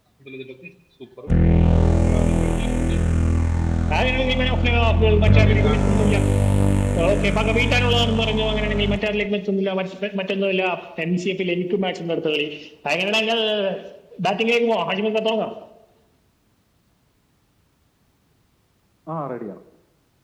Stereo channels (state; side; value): identical; both; correlation 1.00